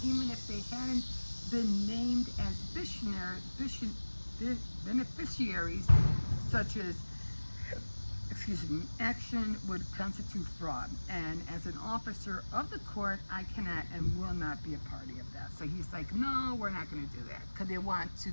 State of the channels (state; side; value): inverted; both; correlation -1.00